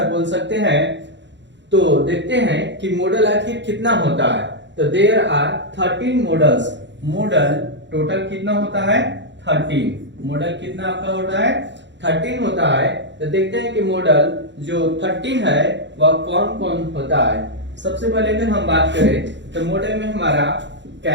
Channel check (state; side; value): late; left; 0.52 ms